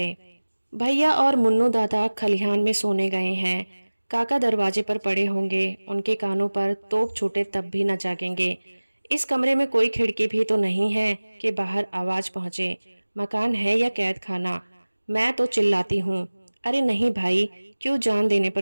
भैया और मुन्नू दादा खलिहान में सोने गए हैं। काका दरवाजे पर पड़े होंगे, उनके कानों पर तोप छूटे तब भी न जागेंगे। इस कमरे में कोई खिड़की भी तो नहीं है कि बाहर आवाज पहुंचे। मकान है या कैद खाना? मैं तो चिल्लाती हूँ, अरे नहीं भाई, क्यों जान देने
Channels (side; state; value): both; inverted; correlation -1.00